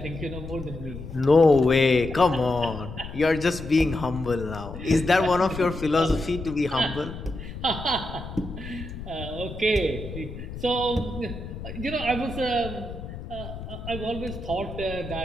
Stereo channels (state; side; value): noise; left; rumble, 10 dB below the sound